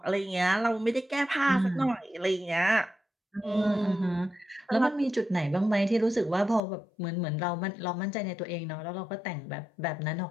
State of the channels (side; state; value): right; drops out; at 6.6 s